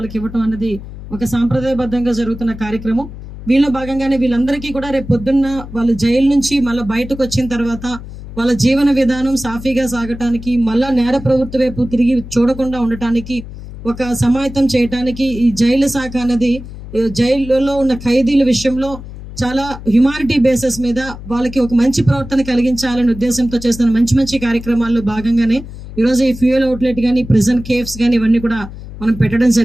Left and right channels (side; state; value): left; noise; hum, 13 dB below the sound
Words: ఇవ్వటం అనేది ఒక సాంప్రదాయబద్ధంగా జరుగుతున్న కార్యక్రమం. వీళ్ళ భాగంగానే వీళ్ళందరికీ కూడా రేపు పొద్దున్న వాళ్ళ జైలు నుంచి మళ్ళీ బయటకు వచ్చిన తర్వాత వాళ్ళ జీవన విధానం సాఫీగా సాగటానికి, మళ్ళా నేర ప్రవృత్తి వైపు తిరిగి చూడకుండా ఉండటానికి, ఒక సమాయత్తం చేయటానికి ఈ జైలు శాఖ అనేది జైలులో ఉన్న ఖైదీల విషయంలో చాలా హ్యుమానిటీ బేసిస్ మీద వాళ్ళకి ఒక మంచి ప్రవర్తన కలిగించాలనే ఉద్దేశంతో చేస్తున్న మంచి మంచి కార్యక్రమాల్లో భాగంగానే ఈరోజు ఈ ఫ్యూయల్ అవుట్లెట్ కానీ, ప్రిజన్ కేఫ్స్ కానీ ఇవన్నీ కూడా మనం పెట్టడం